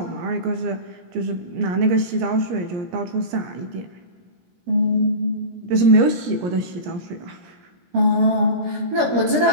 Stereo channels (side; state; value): left; late; 17 ms